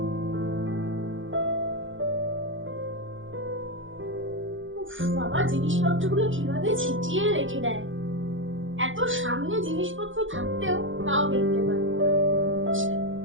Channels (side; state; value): left; late; 0.57 ms